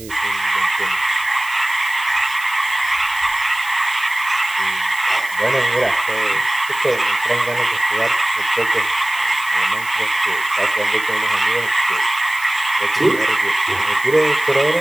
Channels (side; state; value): right; noise; hiss, 17 dB below the sound